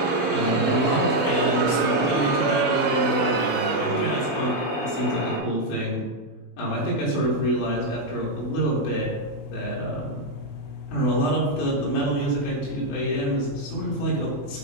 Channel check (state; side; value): late; right; 20 ms